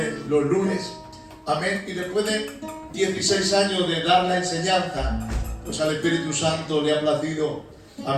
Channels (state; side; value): identical; both; correlation 1.00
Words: los lunes. Amén. Y después de 16 años de dar la enseñanza, pues al Espíritu Santo le ha placido,